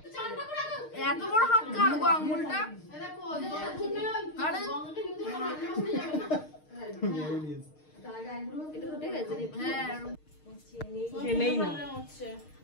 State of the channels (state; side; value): late; right; 6.5 ms